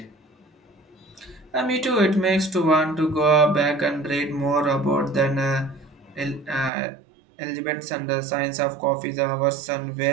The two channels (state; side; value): drops out; left; at 6.7 s